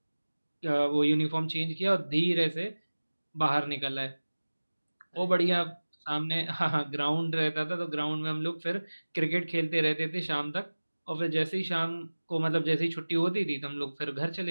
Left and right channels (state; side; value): inverted; both; correlation -1.00